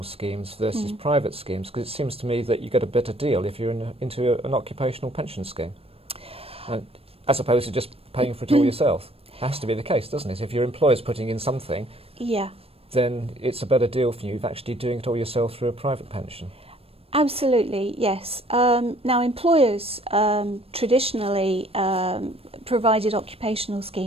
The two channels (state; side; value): late; left; 0.28 ms